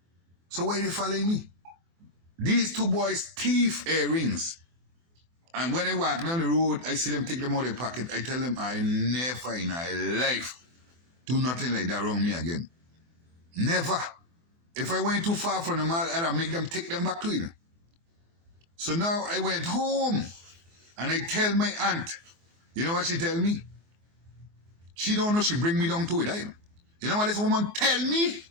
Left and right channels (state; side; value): late; left; 24 ms